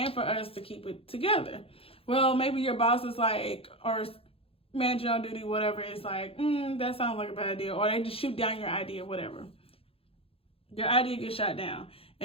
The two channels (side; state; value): right; late; 0.27 ms